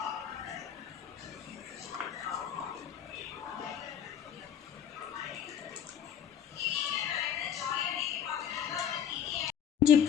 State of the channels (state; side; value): quieter; right; 8.9 dB